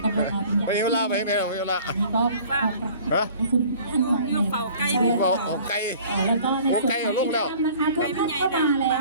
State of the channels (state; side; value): inverted; both; correlation -0.49